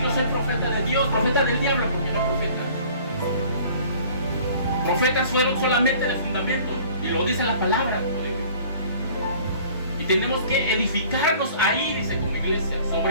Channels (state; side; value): inverted; both; correlation -0.51